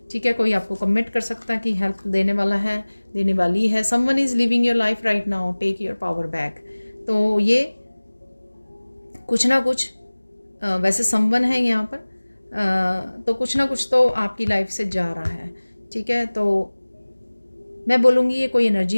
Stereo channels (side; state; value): both; inverted; correlation -1.00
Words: ठीक है, कोई आपको कमिट कर सकता है कि हेल्प देने वाला है, देने वाली है। Someone is living your life right now, take your power back. तो ये कुछ ना कुछ वैसे समवन है यहाँ पर, तो कुछ ना कुछ तो आपकी लाइफ से जा रहा है। ठीक है, तो मैं बोलूँगी ये कोई